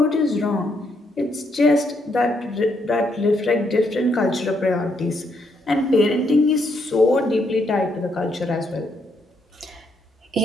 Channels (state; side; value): normal; both; correlation 0.75